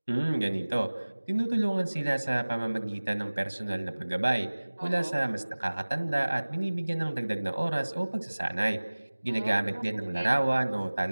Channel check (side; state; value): both; inverted; correlation -1.00